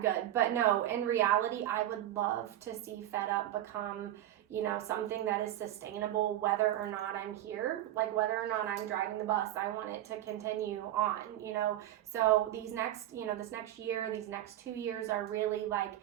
good. But no, in reality, I would love to see Fed Up become something that is sustainable, whether or not I'm here, whether or not I'm driving the bus. I want it to continue on, so these next, this next year, these next 2 years are really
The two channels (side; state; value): left; quieter; 13.1 dB